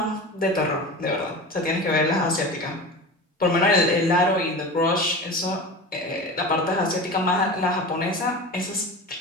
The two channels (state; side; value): normal; both; correlation 0.31